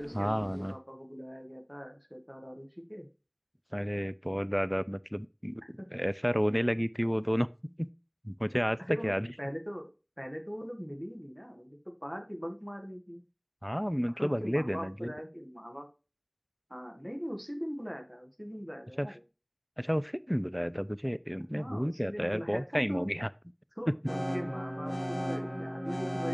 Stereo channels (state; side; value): identical; both; correlation 1.00